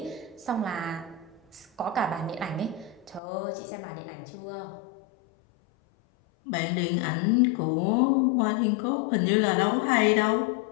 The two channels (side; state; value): right; drops out; at 3.2 s